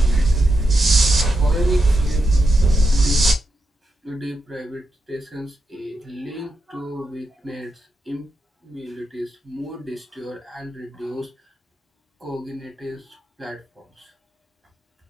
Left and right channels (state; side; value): normal; both; correlation 0.85